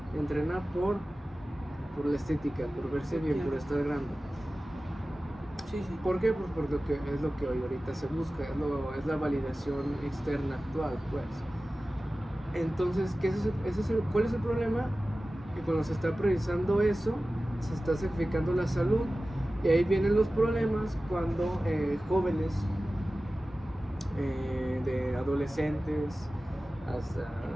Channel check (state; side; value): normal; both; correlation 0.96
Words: entrena por la estética, por verse bien, por estar grande. Sí, sí. ¿Por qué? Pues porque es lo que hoy ahorita se busca, es la validación externa actual, pues. Entonces, ¿cuál es el problema? Que cuando se está priorizando eso, se está sacrificando la salud, y ahí vienen los problemas cuando jóvenes, de adolescentes hasta...